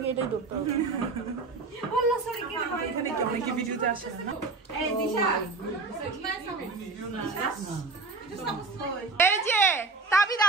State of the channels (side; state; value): left; quieter; 4.0 dB